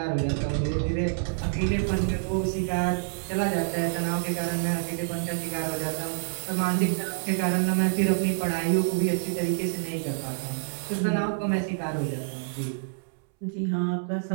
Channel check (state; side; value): silent; left; 60 dB below the other